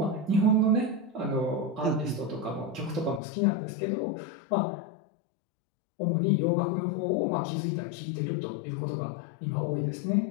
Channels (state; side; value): drops out; right; at 3.2 s